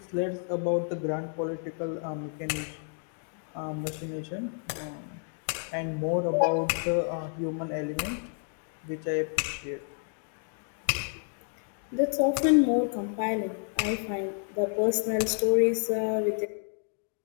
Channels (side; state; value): right; silent; 58 dB below the other